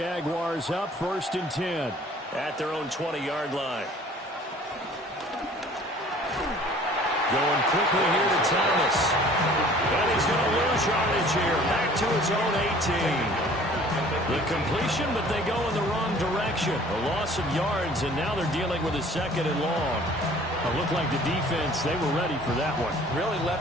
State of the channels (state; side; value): normal; both; correlation 0.51